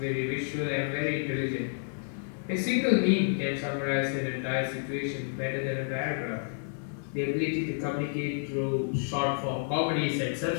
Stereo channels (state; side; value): silent; right; 58 dB below the other